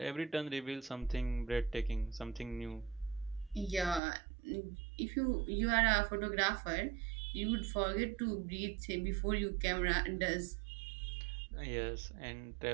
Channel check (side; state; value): left; drops out; at 4.0 s